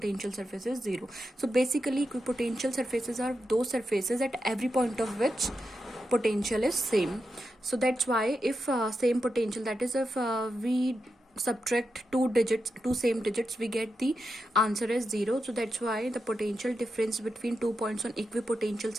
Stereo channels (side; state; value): both; normal; correlation 0.88